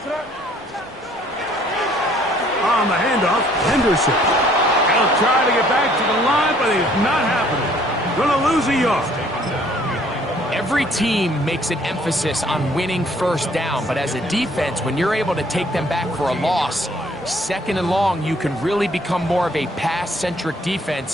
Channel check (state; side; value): normal; both; correlation 0.60